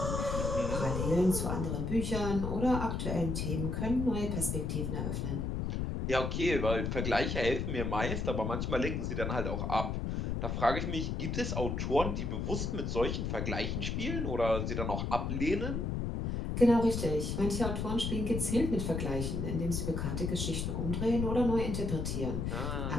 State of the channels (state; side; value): noise; left; rumble, 1 dB below the sound